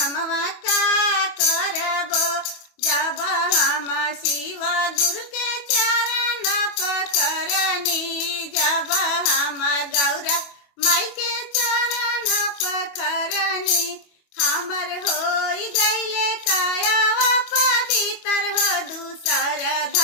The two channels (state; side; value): late; right; 25 ms